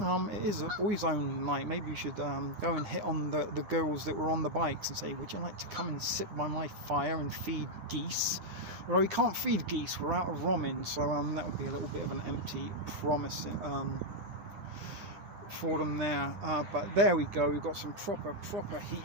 It is a boys only night. Maybe we should go and hit on the girls that were on the bikes and say, would you like to come and sit by my fire and feed geese? Well, we can't feed geese, we're out of romin, so that would be a little bit of an empty promise for them there. But there we go, we've got some proper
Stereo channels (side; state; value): left; late; 10 ms